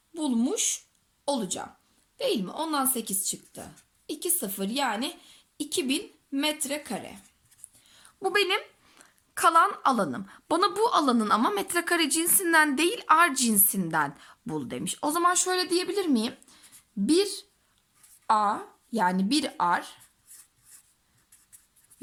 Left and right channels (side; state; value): both; identical; correlation 1.00